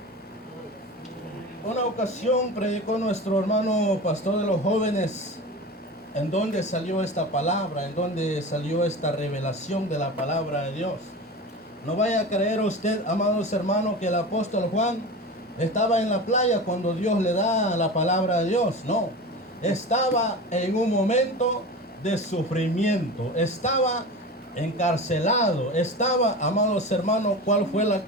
Una ocasión predicó nuestro hermano pastor de los jóvenes, en donde salió esta palabra, en donde salió esta revelación de la palabra de Dios. No vaya a creer usted, amados hermanos, que el apóstol Juan estaba en la playa cuando Dios le da la palabra de Dios. No, estaba en un momento de sufrimiento, estaba encarcelado, estaba, amados hermanos, ¿cuál fue la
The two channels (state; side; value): normal; both; correlation 0.30